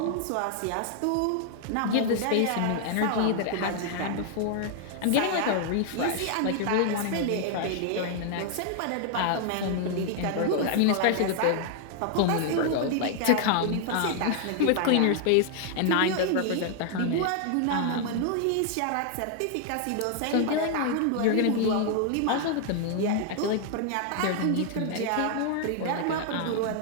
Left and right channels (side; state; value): both; different; correlation 0.00